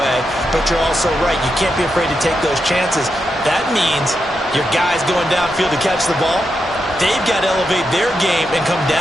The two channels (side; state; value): both; normal; correlation 0.85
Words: But you're also right. You can't be afraid to take those chances. That means your guys going downfield to catch the ball, they've got to elevate their game and come